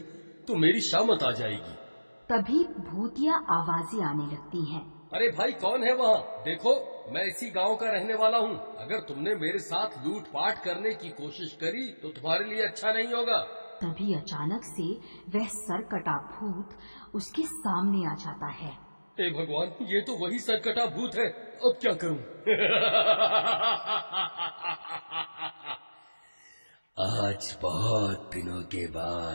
तो मेरी शामत आ जाएगी। तभी भूतिया आवाजें आने लगती हैं। अरे भाई, कौन है वहाँ? देखो, मैं इसी गांव का रहने वाला हूँ। अगर तुमने मेरे साथ लूटपाट करने की कोशिश करी तो तुम्हारे लिए अच्छा नहीं होगा। तभी अचानक से वह सरकटा भूत उसके सामने आ जाता है। हे भगवान, ये तो वही सरकटा भूत है। अब क्या करूँ? आज बहुत दिनों के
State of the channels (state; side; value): inverted; both; correlation -1.00